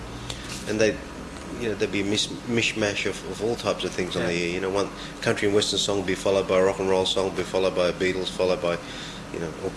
and they, you know, there'd be a mishmash of all types of things on the air. You know, one country and western song would be followed by a rock and roll song, would be followed by a Beatles, followed by, you know,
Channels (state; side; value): identical; both; correlation 1.00